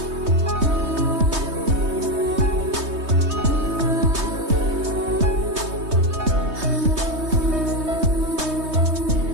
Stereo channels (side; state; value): left; late; 3.2 ms